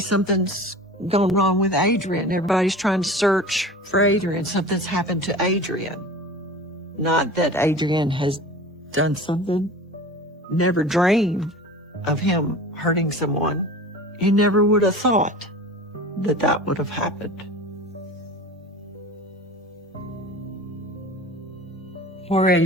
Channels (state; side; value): normal; both; correlation 0.37